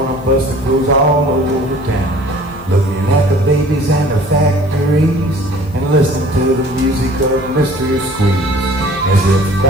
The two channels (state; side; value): normal; both; correlation 0.50